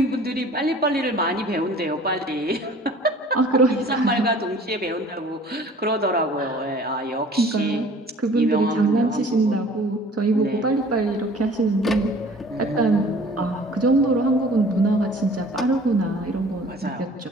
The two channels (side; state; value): both; normal; correlation 0.49